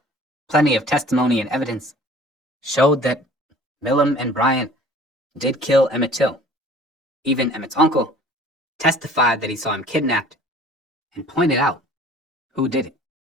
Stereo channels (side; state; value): both; normal; correlation 0.49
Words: plenty of testimony and evidence showed that Millam and Bryant did kill Emmett Till. Even Emmett's uncle testified that he saw him kidnapped and pointed out who did it.